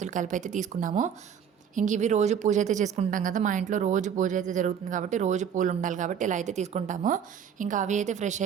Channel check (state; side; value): quieter; left; 8.0 dB